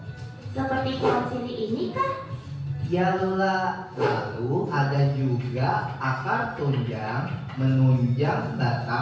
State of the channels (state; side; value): identical; both; correlation 1.00